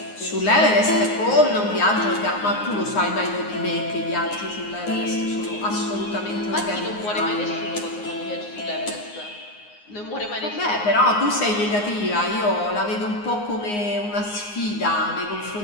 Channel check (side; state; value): right; late; 9.6 ms